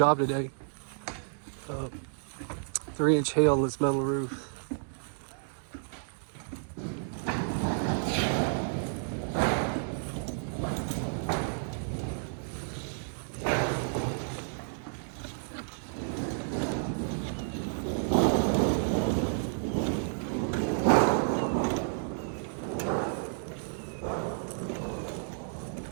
today. 3-inch hail on this metal roof.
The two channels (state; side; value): silent; left; digital silence